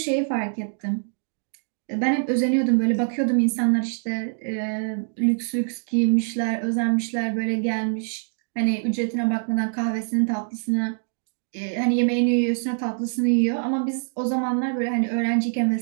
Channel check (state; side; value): silent; left; digital silence